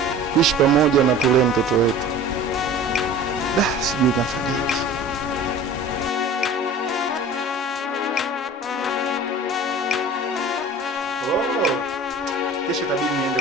tuishi pamoja na tulee mtoto wetu. Sijui nafanyaje. Kesho tabidi niende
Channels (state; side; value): normal; both; correlation 0.41